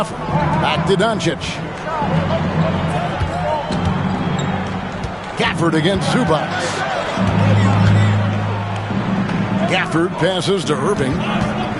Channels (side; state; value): both; identical; correlation 1.00